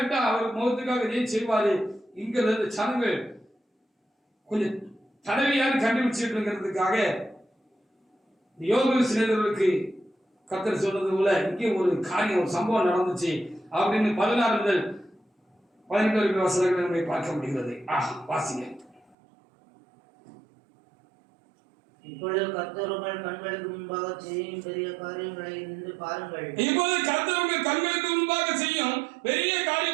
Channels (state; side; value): drops out; left; at 19.2 s